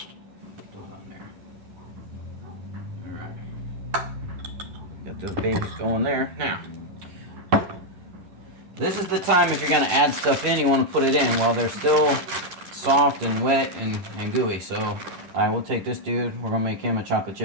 Throw it on there. Alright. Got those babies going there. Now, this is the time, if you're going to add stuff in, you want to put it in while they're still soft and wet and gooey. So I will take this dude, we're going to make him a chocolate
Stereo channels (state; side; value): late; left; 10 ms